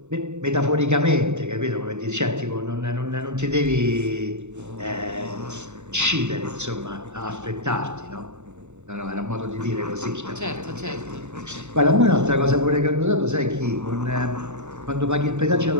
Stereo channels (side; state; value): left; late; 0.83 ms